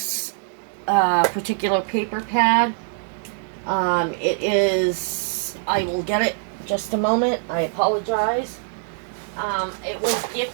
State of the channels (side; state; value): left; silent; digital silence